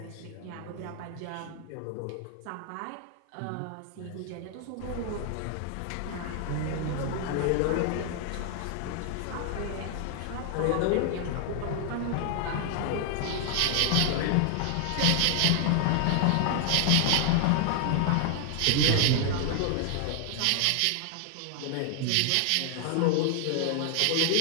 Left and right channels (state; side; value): different; both; correlation 0.00